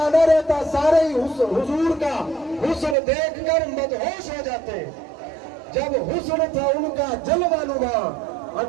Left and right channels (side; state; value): left; drops out; at 3.0 s